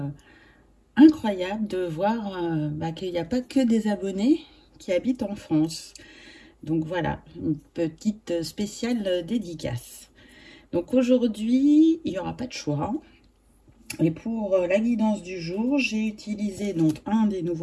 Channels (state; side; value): identical; both; correlation 1.00